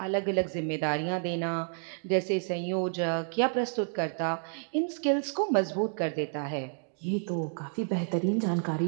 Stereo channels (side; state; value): left; silent; 58 dB below the other